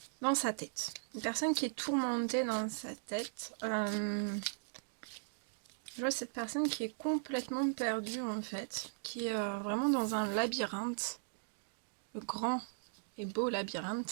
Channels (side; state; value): left; silent; digital silence